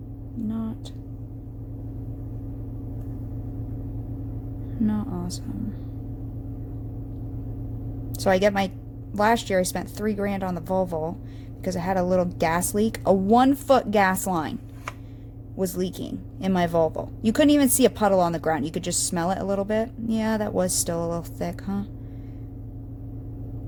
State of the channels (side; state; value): both; identical; correlation 1.00